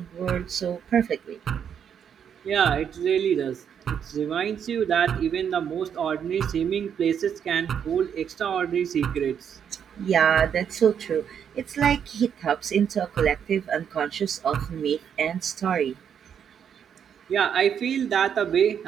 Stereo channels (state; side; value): quieter; left; 8.1 dB